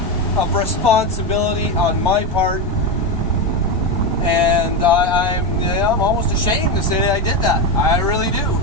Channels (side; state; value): both; normal; correlation 0.13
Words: of responsibility on my part, and I'm almost ashamed to say that I did that. I really do.